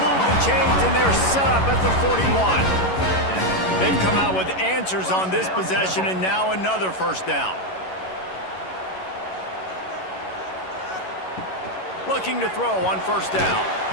the chains, and they're set up at the 41. They've come out with answers on this possession, and now another first down. Looking to throw on first down.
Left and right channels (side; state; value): right; late; 11 ms